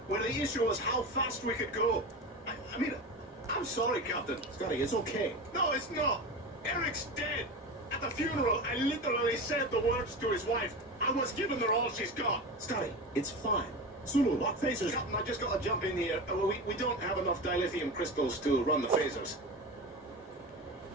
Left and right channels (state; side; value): normal; both; correlation 0.26